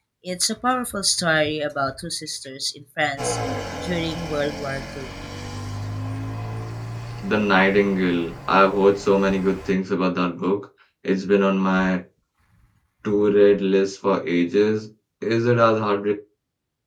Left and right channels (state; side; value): identical; both; correlation 1.00